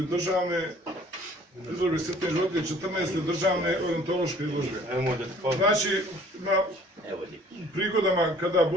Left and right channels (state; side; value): normal; both; correlation 0.54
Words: državne izložbe svjetnih životinja, 14. državne orijentološke izložbe. Znači, na prigodama kada